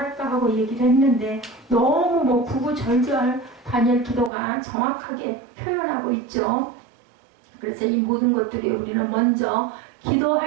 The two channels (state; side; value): drops out; left; at 4.3 s